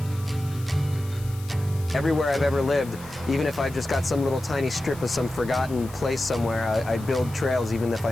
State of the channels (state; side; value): noise; left; hiss, 19 dB below the sound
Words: Everywhere I've ever lived, even if I've just got some little tiny strip of some forgotten place somewhere, I build trails even if I